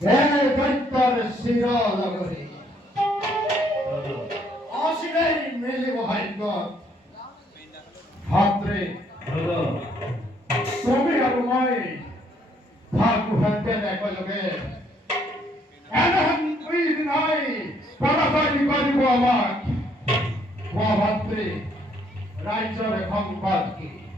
এই দৈত্যর শিরনগরে দাদা অসিরেই মিলিব ভাগ্য ভাত্রে দাদা তুমি আৰু মই ভাগু হাতে একেলগে এনেহেন দুই দিনাই পৰাজয় কৰিব আমাক কোৱা ভাত্ৰে ৰাজ্যৰ সংবাদ কি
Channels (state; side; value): normal; both; correlation 0.67